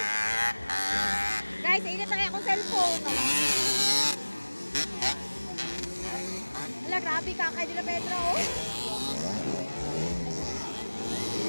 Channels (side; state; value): both; inverted; correlation -1.00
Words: Guys, init na kaya akong cellphone. Wala, grabe ka kay Dila Pedro. Oh.